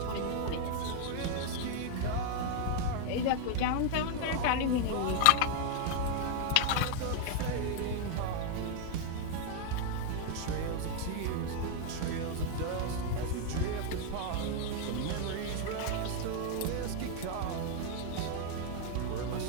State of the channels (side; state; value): both; different; correlation 0.00